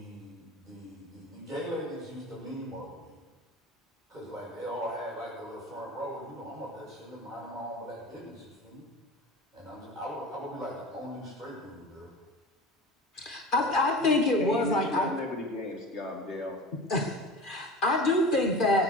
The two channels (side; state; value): both; normal; correlation 0.34